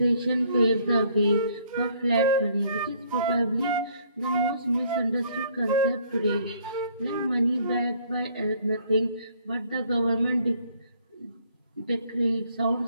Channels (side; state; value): both; inverted; correlation -0.62